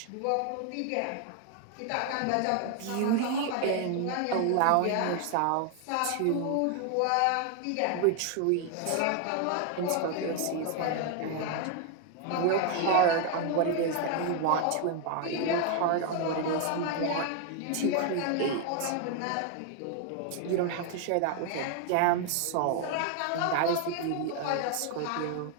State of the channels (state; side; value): different; both; correlation 0.01